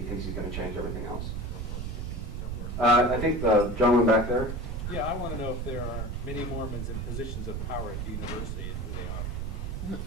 thinks he's going to change everything else. I think the gentleman back there. Yeah, I want to know if there are many Mormons in positions of power at the university and who they are.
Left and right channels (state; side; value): noise; right; rumble, 4 dB below the sound